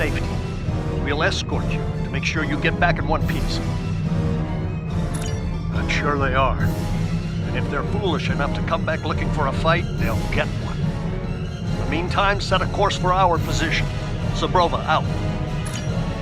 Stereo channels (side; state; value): both; identical; correlation 1.00